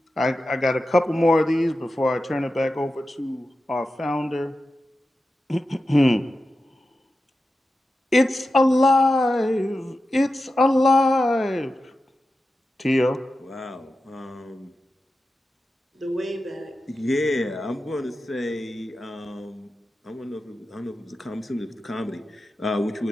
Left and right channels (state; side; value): normal; both; correlation 0.92